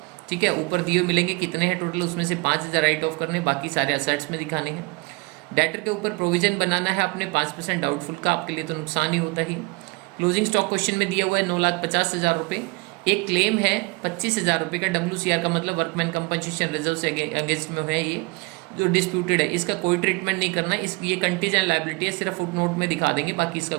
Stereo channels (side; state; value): left; quieter; 27.0 dB